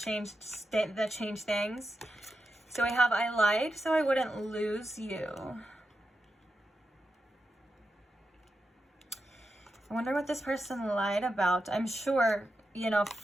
things. So I have, I lied so I wouldn't lose you. I wonder what this person lied about. I'm sure, you know,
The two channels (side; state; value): both; normal; correlation 0.88